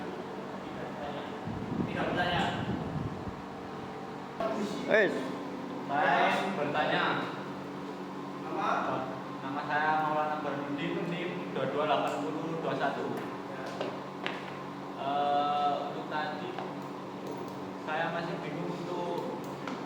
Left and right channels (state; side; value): identical; both; correlation 1.00